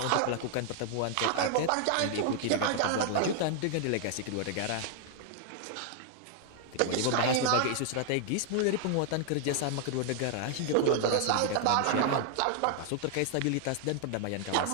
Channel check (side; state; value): both; different; correlation 0.00